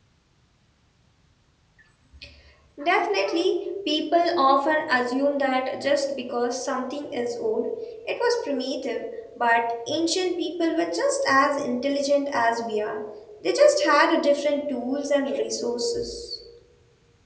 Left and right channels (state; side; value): identical; both; correlation 1.00